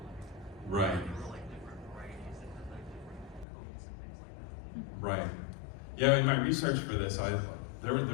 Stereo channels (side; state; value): right; drops out; at 3.5 s